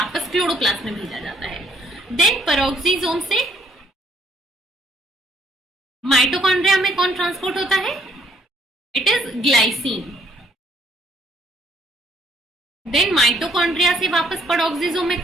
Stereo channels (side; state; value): both; normal; correlation 0.65